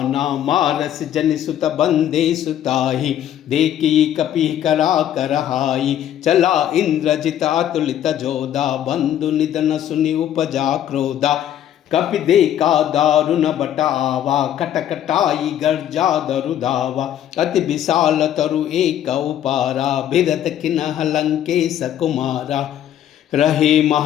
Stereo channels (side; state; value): right; quieter; 10.9 dB